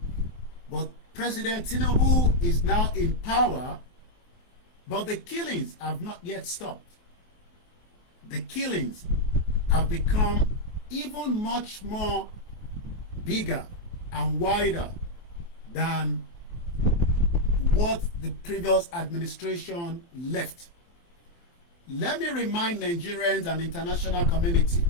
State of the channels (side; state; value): right; late; 23 ms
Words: But President Tinubu is now in power, but the killings have not yet stopped. The killings have become even much more bigger and wider than what the previous administration left. Let me remind Nigerians and international community